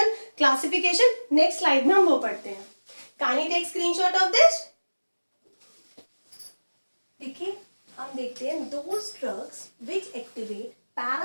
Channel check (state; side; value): inverted; both; correlation -1.00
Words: classification. Next slide में हम वो पढ़ते हैं. Can you take screenshot of this. देखिए हम देखते हैं those drugs which activate